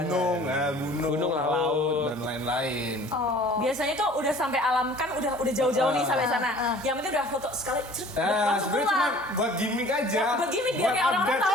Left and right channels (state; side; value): normal; both; correlation 0.49